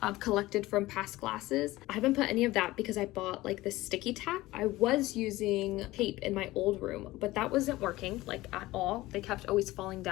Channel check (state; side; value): quieter; right; 18.3 dB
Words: collected from past classes. I haven't put any of that because I bought like this sticky tack. I was using tape in my old room, but that wasn't working like at all. They kept always falling